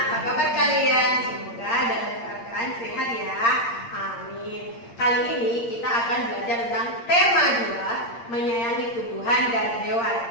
apa kabar kalian? Semoga dalam keadaan sehat ya. Amin. Kali ini kita akan belajar tentang tema 2, menyayangi tumbuhan dan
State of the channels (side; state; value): right; late; 8.7 ms